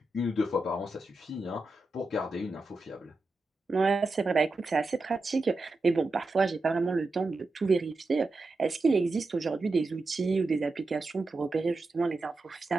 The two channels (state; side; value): quieter; left; 3.1 dB